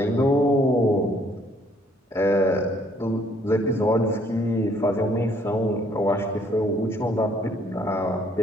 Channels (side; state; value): both; normal; correlation 0.64